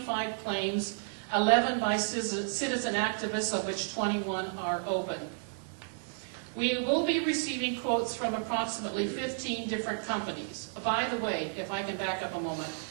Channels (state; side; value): silent; left; digital silence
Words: claims, 11 by citizen activists, of which 21 are open. We will be receiving quotes from approximately 15 different companies. By the way, if I can back up a moment,